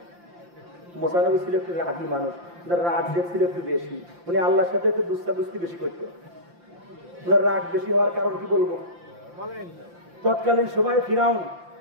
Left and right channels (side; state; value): left; late; 5.8 ms